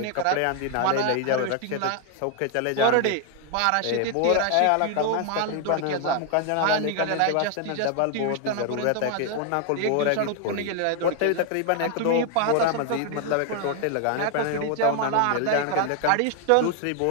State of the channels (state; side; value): different; both; correlation 0.00